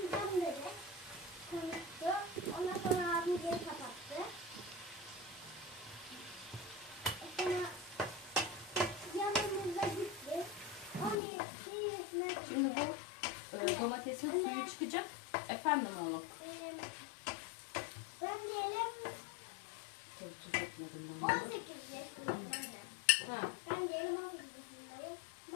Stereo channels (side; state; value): right; drops out; at 11.2 s